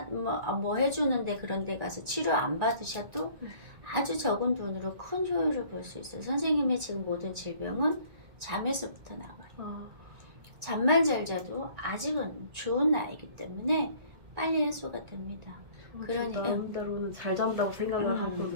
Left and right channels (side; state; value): left; late; 1.9 ms